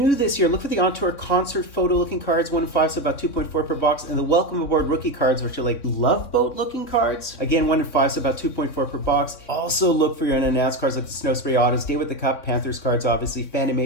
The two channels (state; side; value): late; right; 3.5 ms